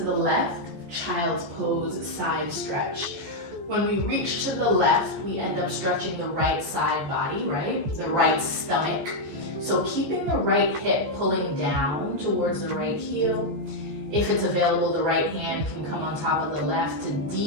left. Child's pose, side stretch. When we reach to the left, we end up stretching the right side body, right? The right stomach. So keeping the right hip pulling down towards the right heel. If it's available, the right hand can come on top of the left to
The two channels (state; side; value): late; left; 14 ms